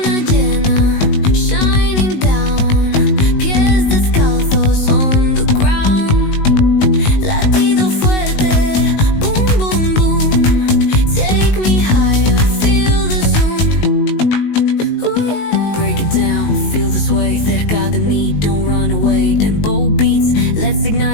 llena, shining down. Pies descalzos on the ground. Latido fuerte, boom, boom, boom. Take me higher, feel the zoom. Oh yeah. Break it down, feel the sway. Cerca de mí, don't run away. Tempo beats, let's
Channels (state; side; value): late; right; 19 ms